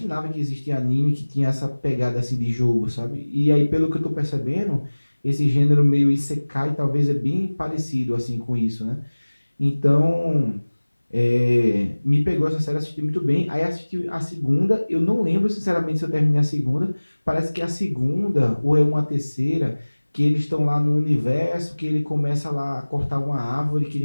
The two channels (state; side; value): inverted; both; correlation -1.00